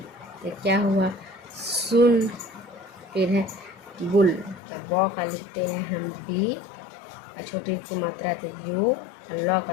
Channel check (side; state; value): right; drops out; at 4.6 s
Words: तो क्या हुआ? सुन। फिर है बुल, तो बौ का लिखते हैं हम बी और छोटी ऊ की मात्रा तो यू। लॉ